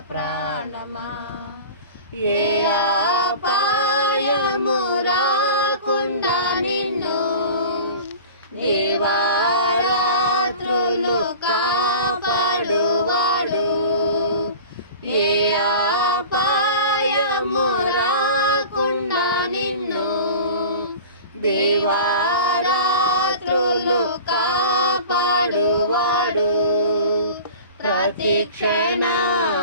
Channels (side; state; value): both; inverted; correlation -0.38